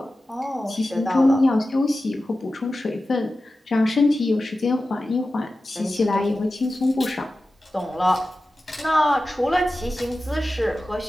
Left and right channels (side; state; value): both; normal; correlation 0.94